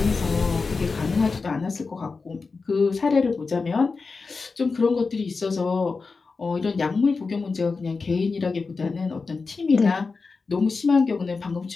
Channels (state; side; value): quieter; right; 4.4 dB